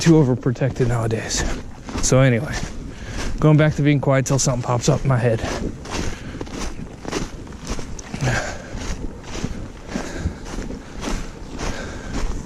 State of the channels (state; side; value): identical; both; correlation 1.00